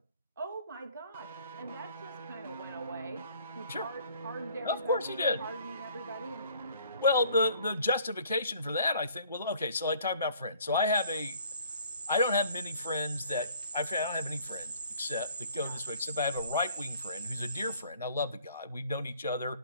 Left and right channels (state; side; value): inverted; both; correlation -0.57